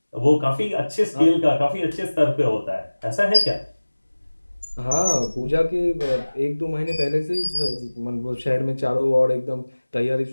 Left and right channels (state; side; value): inverted; both; correlation -1.00